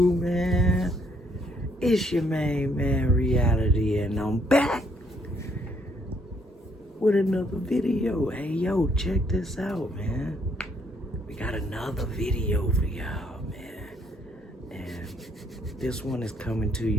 man? It's your main man, Reality, and I'm back with another video. Hey, yo, check this out, man. We got another video for y'all, man. And this one is coming to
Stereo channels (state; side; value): normal; both; correlation 0.69